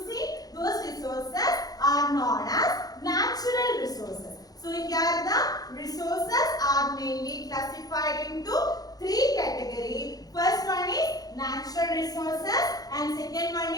those resources are known as natural resources. So here the resources are mainly classified into three categories. First one is natural resources and second one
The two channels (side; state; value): right; late; 0.18 ms